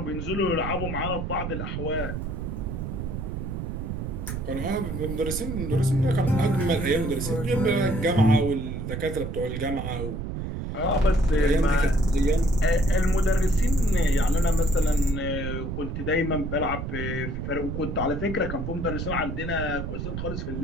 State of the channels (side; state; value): right; noise; rumble, 5 dB below the sound